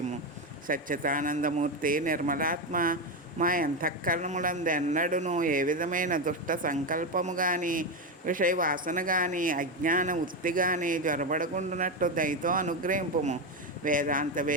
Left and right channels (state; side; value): normal; both; correlation 0.12